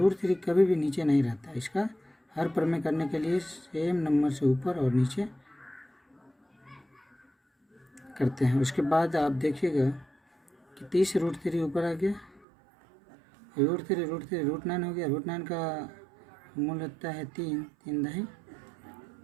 कभी भी नीचे नहीं रहता, इसका हर प्रमेय करने के लिए सेम नंबर से ऊपर और नीचे करते हैं। उसके बाद आप देखिएगा कि 30√3 ऊपर आ गया, √3 √9 हो गया, √9 का मूल होता है 3 दही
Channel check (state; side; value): drops out; left; at 12.5 s